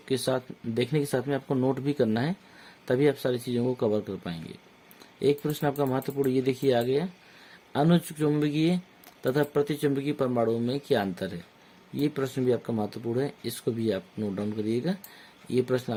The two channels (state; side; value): identical; both; correlation 1.00